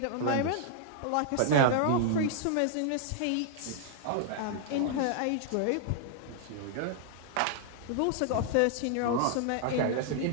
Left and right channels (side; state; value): both; different; correlation -0.01